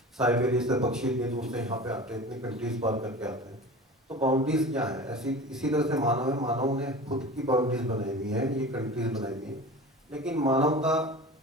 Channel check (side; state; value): both; normal; correlation 0.35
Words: साइबेरिया से पक्षी इतनी दूर से यहाँ पे आते हैं, इतनी कंट्रीज पार करके आते हैं। तो बाउंड्रीज क्या है? ऐसी इसी तरह से मानव है, मानव ने खुद की बाउंड्रीज बनाई हुई है, ये कंट्रीज बनाई हुई है। लेकिन मानवता,